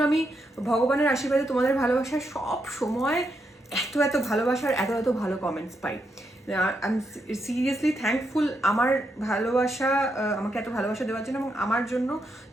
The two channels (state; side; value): normal; both; correlation 0.81